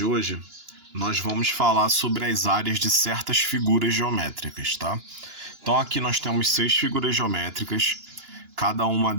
hoje, nós vamos falar sobre as áreas de certas figuras geométricas, tá? Então aqui nós temos 6 figuras geométricas, cada uma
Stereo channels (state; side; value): late; left; 2.9 ms